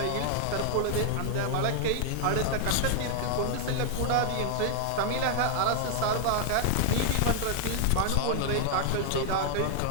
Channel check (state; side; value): different; both; correlation 0.00